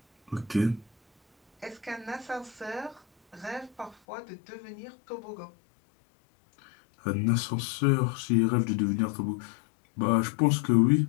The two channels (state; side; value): drops out; right; at 4.0 s